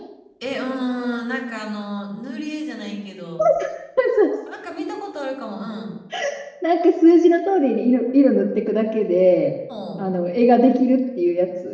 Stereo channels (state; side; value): identical; both; correlation 1.00